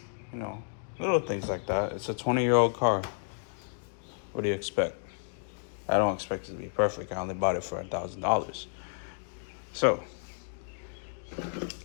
You know, little things like that. It's a 20-year-old car. What do you expect? I don't expect it to be perfect. I only bought it for $1,000. So,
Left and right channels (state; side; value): silent; right; 57 dB below the other